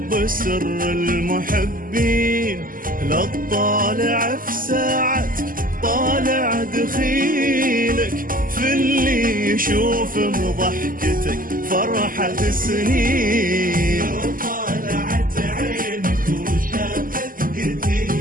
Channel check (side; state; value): left; late; 0.41 ms